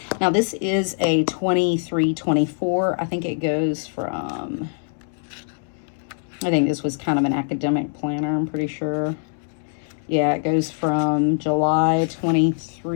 Now this is a 23-24. I think it goes from, I think this was kind of an academic planner, I'm pretty sure. Yeah, it goes from July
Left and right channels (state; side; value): silent; right; 63 dB below the other